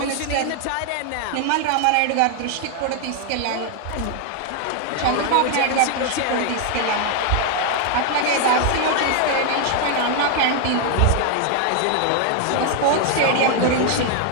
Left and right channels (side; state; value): both; different; correlation 0.00